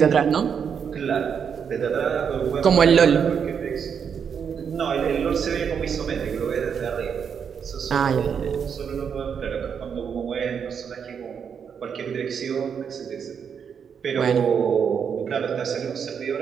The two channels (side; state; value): left; quieter; 7.1 dB